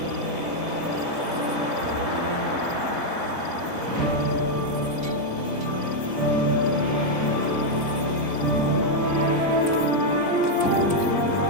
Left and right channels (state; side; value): late; left; 3.9 ms